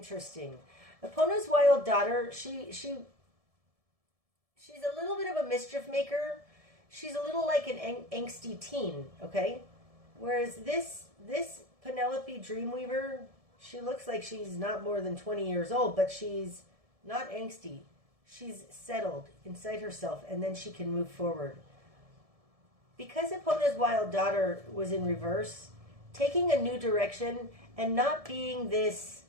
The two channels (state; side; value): late; left; 1.7 ms